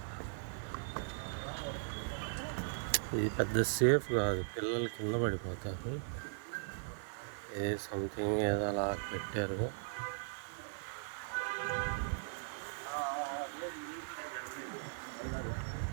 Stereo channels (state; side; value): silent; left; digital silence